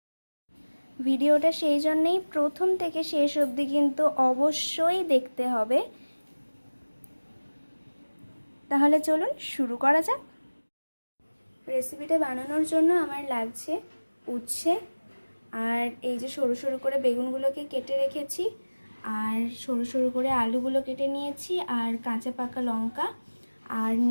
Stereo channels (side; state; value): both; inverted; correlation -1.00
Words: ভিডিওটা সেই জন্যেই প্রথম থেকে শেষ অবধি কিন্তু অবশ্যই দেখতে হবে। তাহলে চলুন শুরু করা যাক। রেসিপিটা বানানোর জন্য আমার লাগছে উচ্ছে, আর এই যে সরু সরু করে বেগুনগুলোকে কেটে রেখেছি, আর সরু সরু করে আলুগুলো কেটে নিয়েছি, আর কাঁচা পাকা লঙ্কা, আর